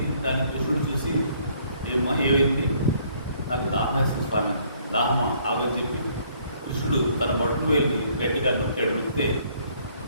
దాన్ని కృష్ణుడు చూసి, ఏమైంది, నాకు దాహం వేస్తుంది స్వామి, దాహమా ఆగని చెప్పి కృష్ణుడు తన బొట్టు వేలిని గట్టిగా నొక్కాడు. నొక్కితే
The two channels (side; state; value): both; inverted; correlation -0.64